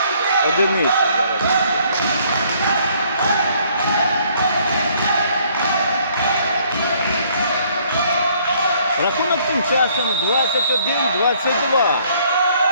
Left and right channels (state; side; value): inverted; both; correlation -0.63